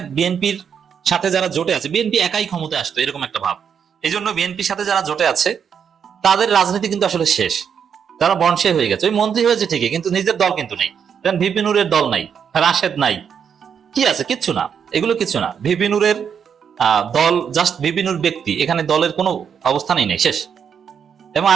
বিএনপির সাথে যারা জোটে আছে, বিএনপি একাই ক্ষমতায় আসতো এরকম একটা ভাব। এই জন্য বিএনপির সাথে যারা জোটে আছে তাদের রাজনীতি কিন্তু আসলে শেষ, তারা বনশে হয়ে গেছে। ওই মন্ত্রী হয়েছে ঠিকই, কিন্তু নিজের দল কিন্তু নেই। ভিপি নুরের দল নাই, রাশেদ নাই, কি আছে? কিচ্ছু না, এগুলো কিছু না। ভিপি নুরের দল জাস্ট ভিপি নুর ব্যক্তি, এখানে দলের কোনো অবস্থানই নেই, শেষ। এবং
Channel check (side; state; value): left; quieter; 7.4 dB